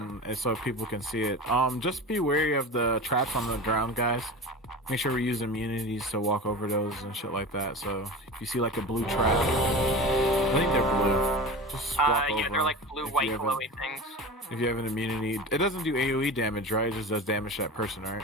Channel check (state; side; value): normal; both; correlation 0.31